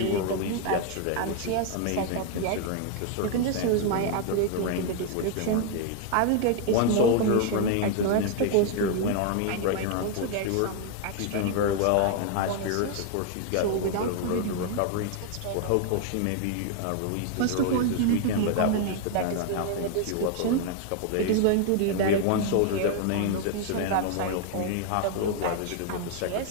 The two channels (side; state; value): both; different; correlation 0.00